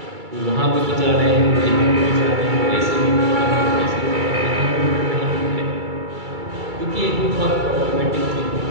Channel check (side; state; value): left; late; 2.3 ms